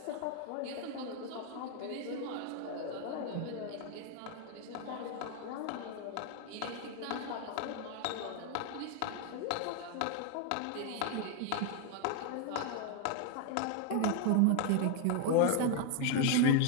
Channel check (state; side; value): different; both; correlation 0.00